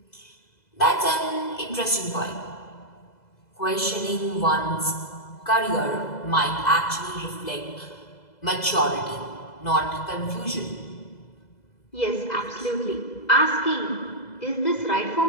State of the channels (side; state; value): right; late; 2.0 ms